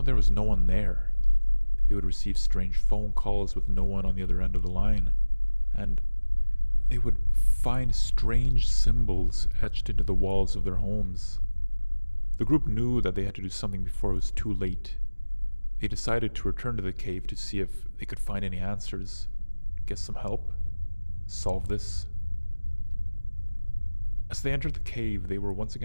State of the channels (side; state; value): both; inverted; correlation -1.00